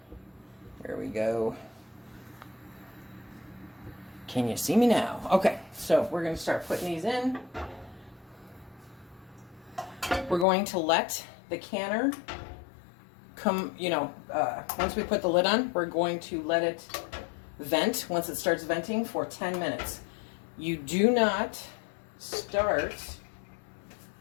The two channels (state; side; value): drops out; right; at 10.5 s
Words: There we go. Can you see me now? Okay, so we're going to start putting these in. We're going to let the canner come, you know, once we put the lid on, we're going to let it vent once it starts venting for 10 minutes. You do not start